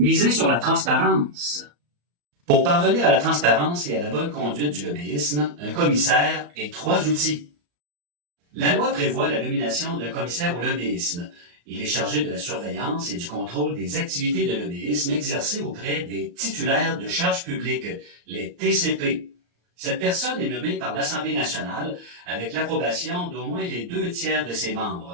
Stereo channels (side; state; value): left; late; 34 ms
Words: sur la transparence. Pour parvenir à la transparence et à la bonne conduite du lobbyisme, un commissaire et 3 outils. La loi prévoit la nomination d'un commissaire au lobbyisme. Il est chargé de la surveillance et du contrôle des activités de lobbyisme exercées auprès des titulaires de charges publiques, les TCP. Cette personne est nommée par l'Assemblée nationale avec l'approbation d'au moins les 2/3 de ses